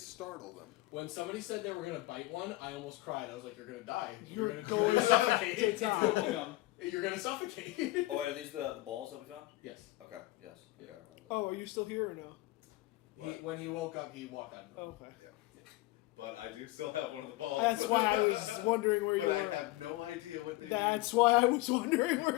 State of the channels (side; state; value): right; quieter; 18.8 dB